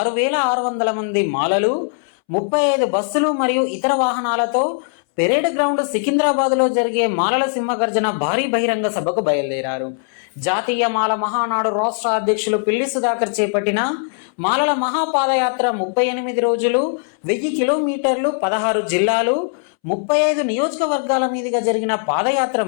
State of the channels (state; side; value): silent; right; 66 dB below the other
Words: మంది మాలలు 35 బస్సులు మరియు ఇతర వాహనాలతో పెరేడ్ గ్రౌండ్ సికింద్రాబాద్లో జరిగే మాలల సింహగర్జన భారీ బహిరంగ సభకు బయలుదేరారు. జాతీయ మాల మహానాడు రాష్ట్ర అధ్యక్షులు పిల్లి సుధాకర్ చేపట్టిన మాలల మహాపాదయాత్ర 38 రోజులు 1000 కిలోమీటర్లు 16 జిల్లాలు 35 నియోజకవర్గాల మీదుగా జరిగిన పాదయాత్ర